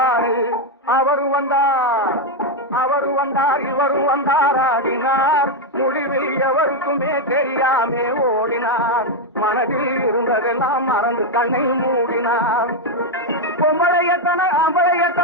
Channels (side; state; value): both; normal; correlation 0.03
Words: அவரும் வந்தார் இவரும் வந்தார் ஆடினார். முடிவில் எவருக்குமே தெரியாமே ஓடினார். மனதில் இருந்ததெல்லாம் மறந்து கண்ணை மூடினார். பொம்பளையத்தன